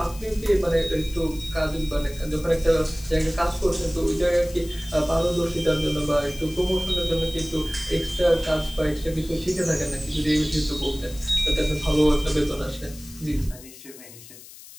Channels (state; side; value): noise; left; hiss, 18 dB below the sound